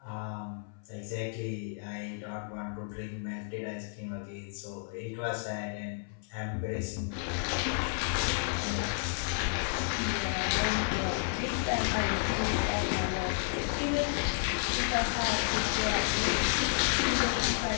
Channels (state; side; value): silent; right; 57 dB below the other